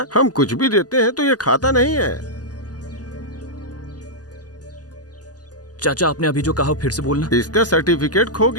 हम कुछ भी देते हैं तो ये खाता नहीं है। चाचा, आपने अभी जो कहा फिर से बोलना। इसका सर्टिफिकेट खो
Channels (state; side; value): late; right; 0.68 ms